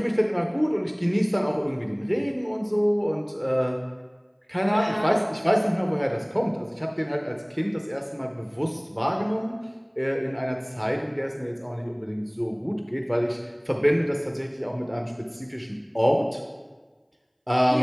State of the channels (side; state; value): both; identical; correlation 1.00